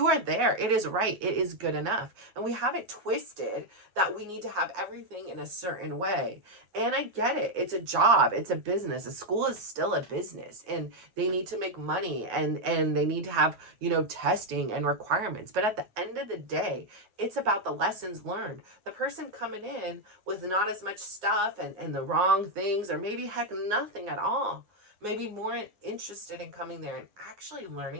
are there. It is right. It is good enough. And we have it twisted that we need to have everything in a certain way. And I get it. It's a job. It's a business. A school is still a business, and they need to make money, and they need to have, testing and requirements. But at the end of the day, it's about the lessons learned. The person coming in with not as much stuff and the wrong things, or maybe heck, nothing at all, maybe more interested in coming there and actually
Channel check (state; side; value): late; left; 9.6 ms